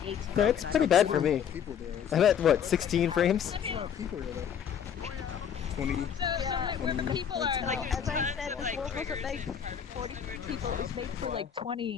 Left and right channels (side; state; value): right; quieter; 8.3 dB